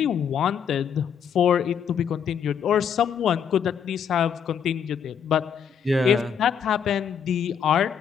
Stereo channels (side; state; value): right; quieter; 7.6 dB